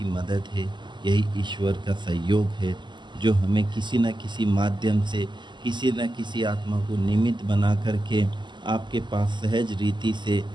मदद है, यही ईश्वर का सहयोग है, जो हमें किसी न किसी माध्यम से, किसी न किसी आत्मा को निमित्त बना करके आपके पास सहज रीति से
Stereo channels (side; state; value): left; late; 0.22 ms